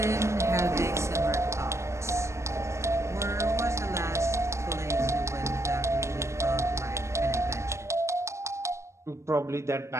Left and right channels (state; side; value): late; left; 0.14 ms